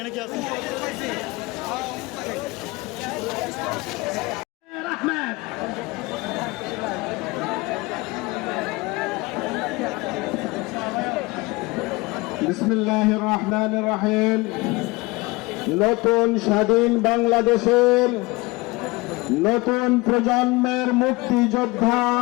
কি আছে? বিসমিল্লাহির রহমানির রহিম। নতুন স্বাধীন বাংলাদেশের নতুন প্রজন্মের মুক্তিযোদ্ধা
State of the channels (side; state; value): right; quieter; 23.4 dB